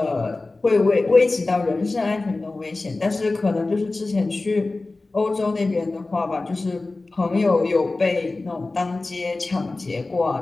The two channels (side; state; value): right; quieter; 3.3 dB